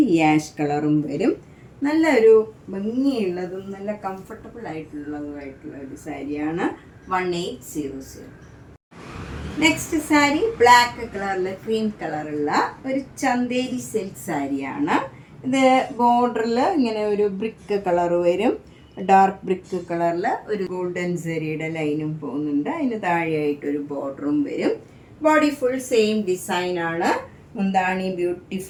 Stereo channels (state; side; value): identical; both; correlation 1.00